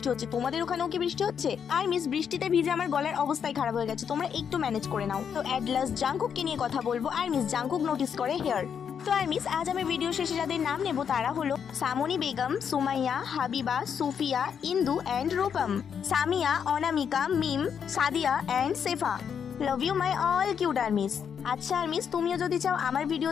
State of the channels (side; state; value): right; quieter; 7.5 dB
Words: হচ্ছে, তোমাদের ওখানেও কি বৃষ্টি হচ্ছে? আর মিস, বৃষ্টিতে ভিজে আমার গলার অবস্থায় খারাপ হয়ে গেছে, তোমরা একটু ম্যানেজ করে নাও। তো অ্যাট লাস্ট জাঙ্কুককে নিয়ে কথা বলবো। আর মিস, জাঙ্কুক নোটিস করে হেয়ার। তো আর মিস, আজ আমি ভিডিও শেষে যাদের নাম নেব তারা হলো Samni Begum, Sumaiya, Habiba, Sufiya, Indu and Rupam, Samia, Anamika, Mim, Sadia and Sefa. Love you my all cute armies. আচ্ছা আর্মিস, তুমিও যদি চাও আমার